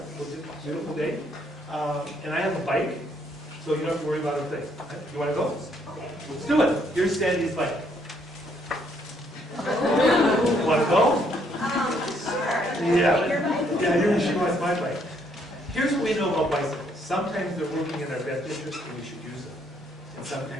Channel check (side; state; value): both; normal; correlation 0.70